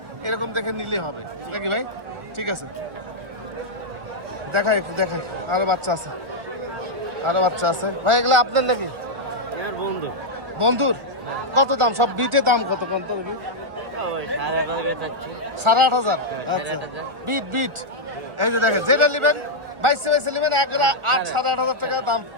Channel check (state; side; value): late; left; 1.4 ms